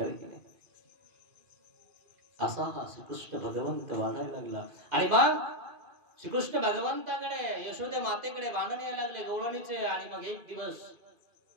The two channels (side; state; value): left; late; 2.5 ms